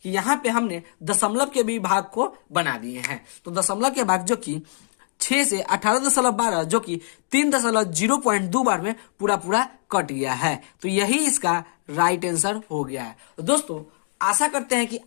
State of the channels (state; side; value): silent; right; digital silence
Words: कि यहाँ पे हमने दशमलव के भी भाग को बना दिए हैं। तो दशमलव के भाग जो कि 6 से 18.12 जो कि 3.02 बार में पूरा पूरा कट गया है। तो यही इसका राइट आंसर हो गया है। तो दोस्तों आशा करते हैं कि